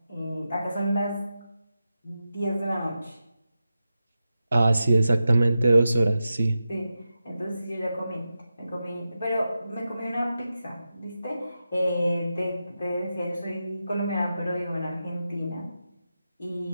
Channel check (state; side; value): inverted; both; correlation -0.90